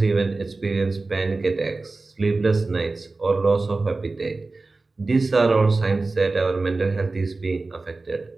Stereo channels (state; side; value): quieter; left; 3.5 dB